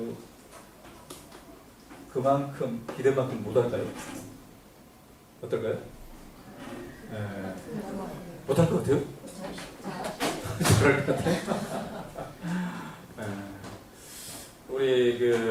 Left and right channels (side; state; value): both; identical; correlation 1.00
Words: 그만큼 기대만큼 못할까요? 어떨까요? 못할 것 같아요? 그럴 것 같아요? 우리